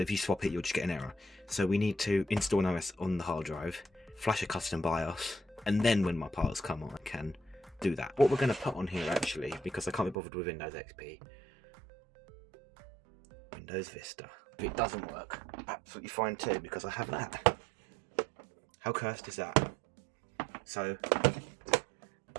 you swap it you'll just get an error. So we need to install an OS on the hard drive, flash a custom BIOS, and then when my parts come on I can do that. What we're going to put on here actually, because I can't be bothered with Windows XP, Windows Vista. If it doesn't work, absolutely fine too, because I have that. How cursed is that? So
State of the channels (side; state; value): left; drops out; at 10.2 s